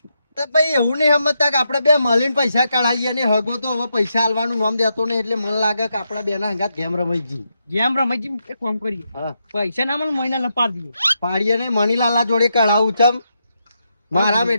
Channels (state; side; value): inverted; both; correlation -0.83